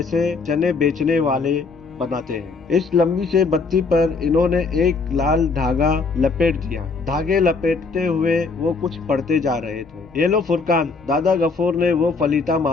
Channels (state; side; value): quieter; right; 4.3 dB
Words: चने बेचने वाले बनाते हैं। इस लंबी से बत्ती पर इन्होंने एक लाल धागा लपेट दिया। धागे लपेटते हुए वो कुछ पढ़ते जा रहे थे। ये लो फुरकान, दादा गफूर ने वो फलीता